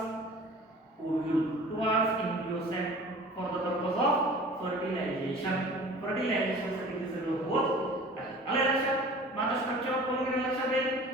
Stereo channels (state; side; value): normal; both; correlation 0.43